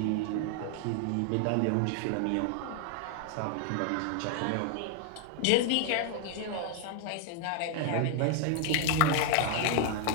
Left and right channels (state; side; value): different; both; correlation 0.00